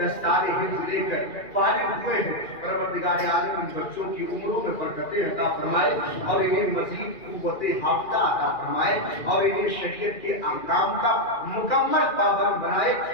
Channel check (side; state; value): right; late; 2.4 ms